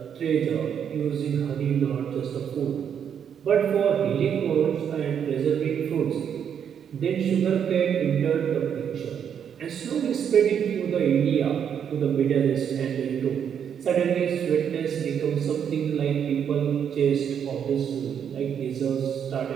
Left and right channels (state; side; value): quieter; left; 8.2 dB